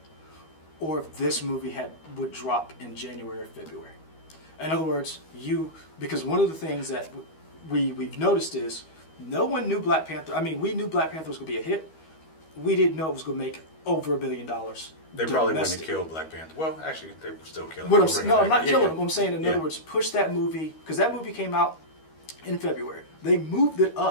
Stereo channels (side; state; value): right; late; 13 ms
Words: or if this movie would drop in January or February. In other words, because one of the things that we've noticed is no one knew Black Panther. I mean, we knew Black Panther was going to be a hit. We didn't know it was going to make over $1 billion. They probably wouldn't have killed Black Panther. Well, actually, they were still killing him. I'm not killing him. I'm saying, in other words, push that movie, because that movie came out in February. They moved it